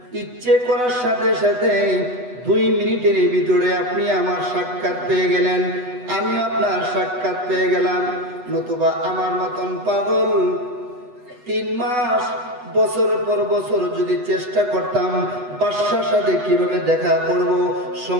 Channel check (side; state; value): left; late; 8.1 ms